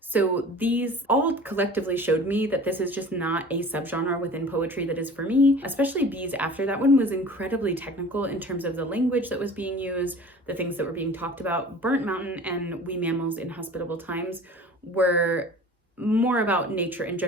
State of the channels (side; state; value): both; normal; correlation 0.42